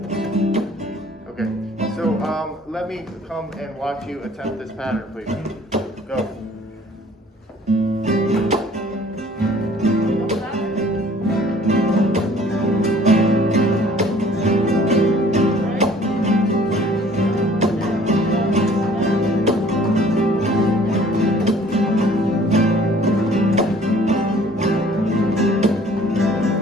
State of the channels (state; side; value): normal; both; correlation 0.54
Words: Okay, so let me come and watch you attempt this pattern, please. Go.